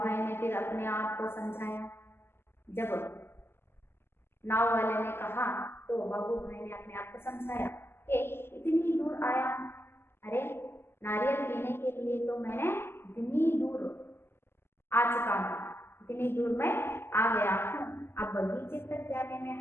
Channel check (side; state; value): right; late; 0.12 ms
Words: ने फिर अपने आप को समझाया। जब नाव वाले ने कहा तो बाबू भाई ने अपने आप को समझाया कि इतनी दूर आया हूं, अरे नारियल पीने के लिए तो मैंने इतनी दूर आ चुका हूँ, इतनी दूर मैं आ गया हूँ, अब बगीचे तक जाने